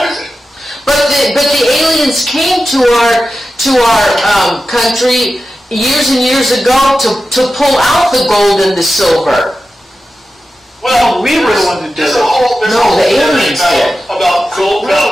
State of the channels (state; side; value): normal; both; correlation 0.92